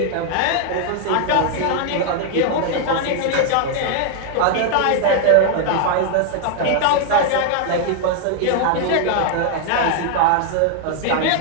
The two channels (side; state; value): both; different; correlation 0.00